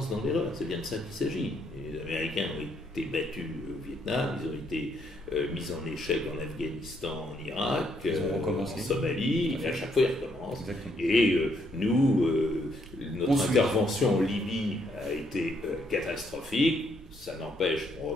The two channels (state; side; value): normal; both; correlation 0.72